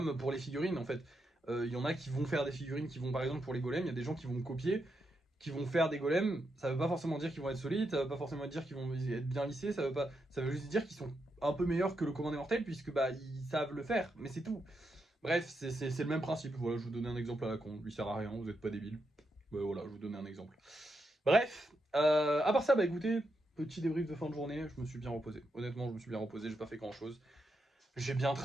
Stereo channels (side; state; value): both; normal; correlation 0.83